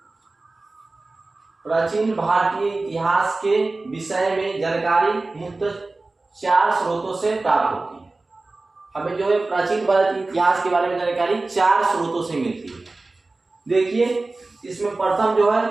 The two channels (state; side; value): quieter; left; 3.3 dB